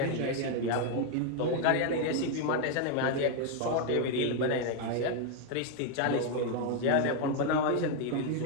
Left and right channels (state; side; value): different; both; correlation 0.01